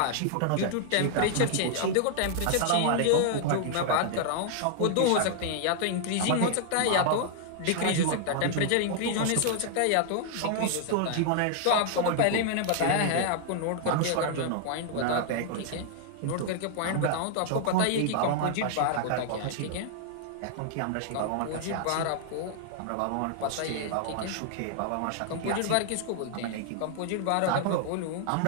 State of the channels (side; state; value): both; different; correlation 0.00